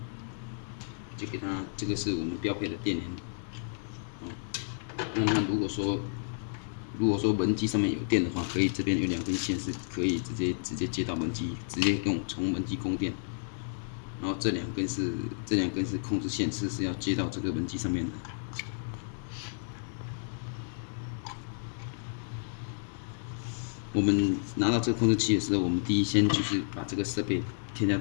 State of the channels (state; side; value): silent; right; digital silence